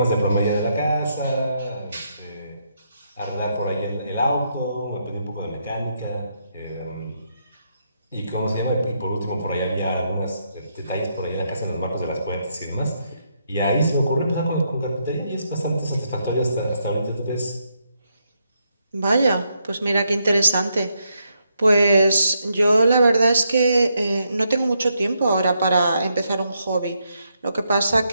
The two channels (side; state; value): both; inverted; correlation -0.79